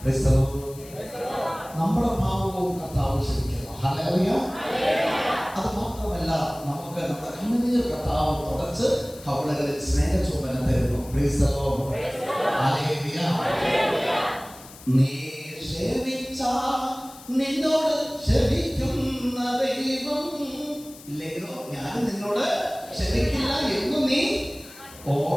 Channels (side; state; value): left; noise; hiss, 19 dB below the sound